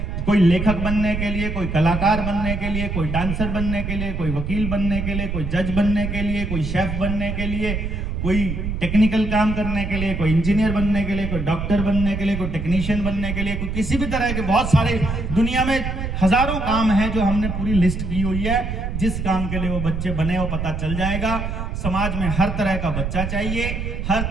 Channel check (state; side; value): noise; right; rumble, 4 dB below the sound